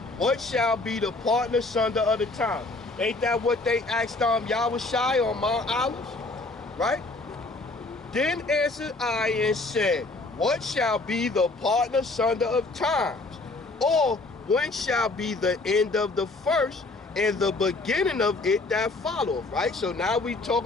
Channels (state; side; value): quieter; right; 3.3 dB